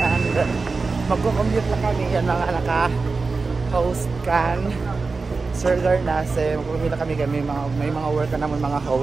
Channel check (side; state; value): left; quieter; 4.2 dB